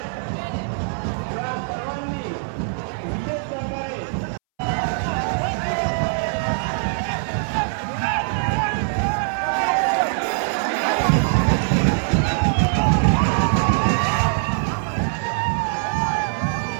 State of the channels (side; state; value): left; silent; 64 dB below the other